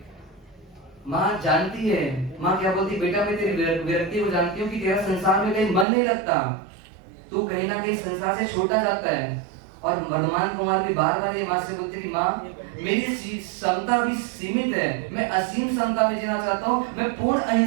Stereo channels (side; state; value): left; drops out; at 5.9 s